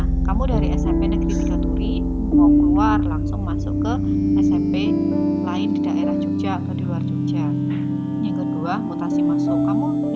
kamu dari SMP Negeri 3 Turi mau keluar langsung masuk ke SMP lain di daerah Jogja atau di luar Jogja. Yang kedua, mutasi masuk. Kamu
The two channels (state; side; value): identical; both; correlation 1.00